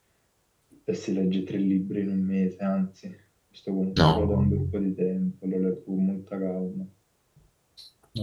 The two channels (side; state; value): both; identical; correlation 1.00